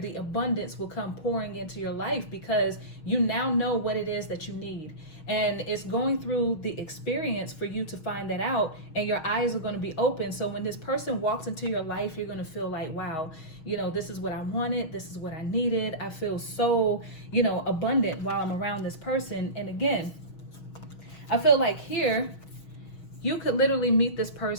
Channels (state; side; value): late; right; 6.3 ms